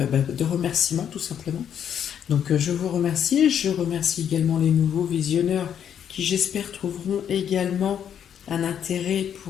remerciement tout simplement. Donc je vous remercie. Je remercie également les nouveaux visionneurs qui j'espère trouveront également un intérêt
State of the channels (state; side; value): quieter; right; 8.9 dB